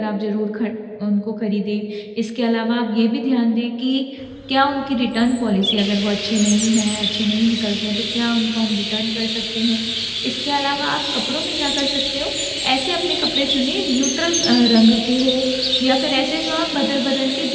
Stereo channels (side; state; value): both; identical; correlation 1.00